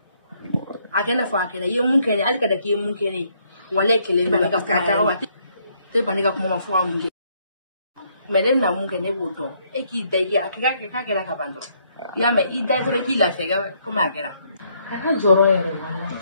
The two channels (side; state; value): both; inverted; correlation -0.70